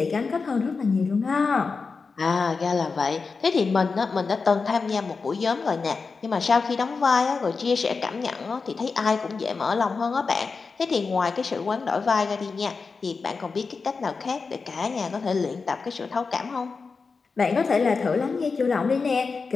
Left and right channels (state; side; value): quieter; right; 4.7 dB